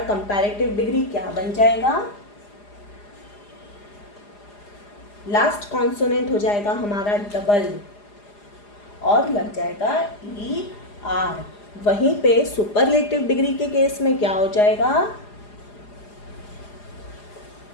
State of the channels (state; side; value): late; right; 4.9 ms